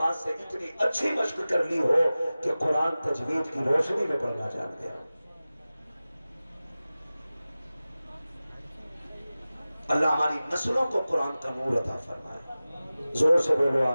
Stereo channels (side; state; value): both; inverted; correlation -0.96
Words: سے اتنی اچھی مشق کر لی ہو کہ قرآن تجوید کی روشنی میں پڑھنا جان گیا۔ اللہ ہماری نسلوں کو قرآن کا نور عطا فرمائے، زور سے بولو